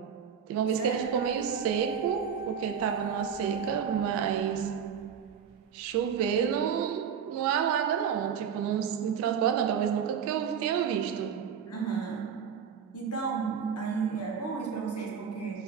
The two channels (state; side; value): quieter; left; 7.5 dB